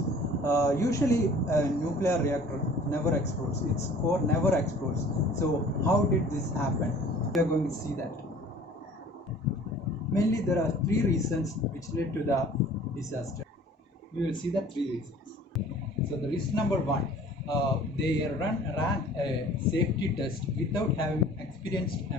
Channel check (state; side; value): normal; both; correlation 0.49